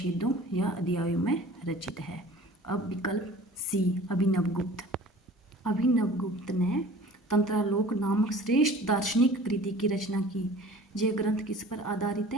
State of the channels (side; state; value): both; normal; correlation 0.45